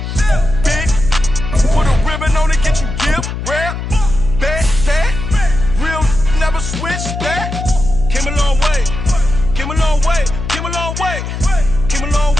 big, put a ribbon on it, get you gift, rep, that, real, never switch, that. Came a long way, came a long way, came a long way, came a long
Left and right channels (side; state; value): left; noise; hum, 6 dB below the sound